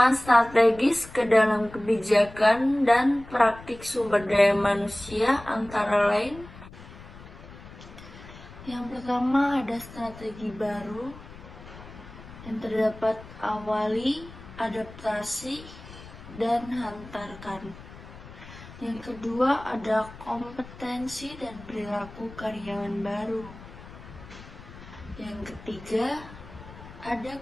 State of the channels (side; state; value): left; noise; rumble, 17 dB below the sound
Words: strategis ke dalam kebijakan dan praktik sumber daya manusia antara lain. Yang pertama ada strategi baru yang terdapat awali, adaptasi, dan hantarkan. Yang kedua ada kompetensi dan perilaku karyawan baru. Yang ketiga ada